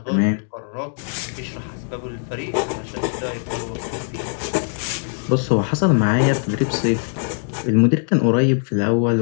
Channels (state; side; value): silent; right; digital silence